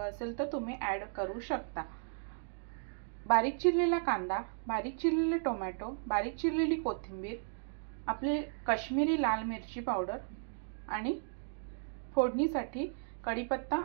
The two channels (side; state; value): left; silent; digital silence